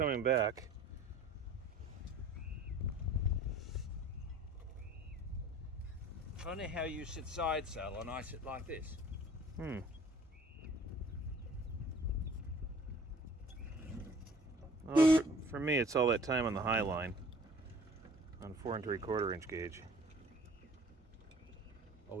back. Funny how you sit side saddle and I sit like this. Well, for me, it's all that time on the high line on 4 3/4 inch gauge.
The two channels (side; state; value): both; normal; correlation 0.50